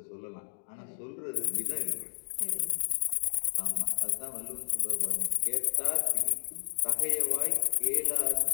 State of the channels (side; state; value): right; silent; digital silence